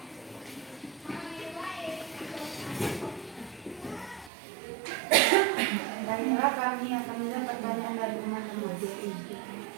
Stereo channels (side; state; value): left; drops out; at 4.3 s